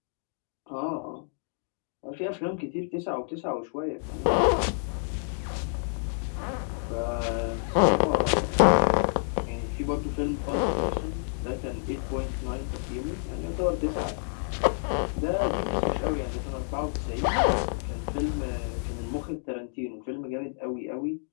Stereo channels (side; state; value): right; silent; digital silence